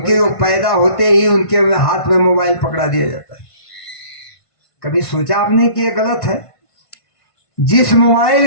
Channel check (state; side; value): late; right; 1.5 ms